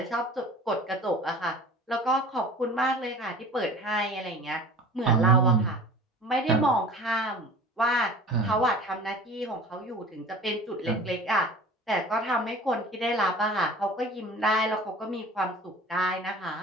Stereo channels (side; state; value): both; normal; correlation 0.42